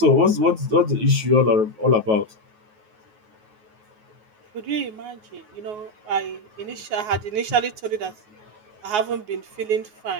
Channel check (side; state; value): left; late; 9.3 ms